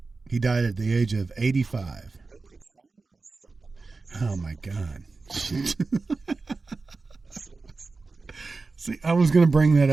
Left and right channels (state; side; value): quieter; left; 3.9 dB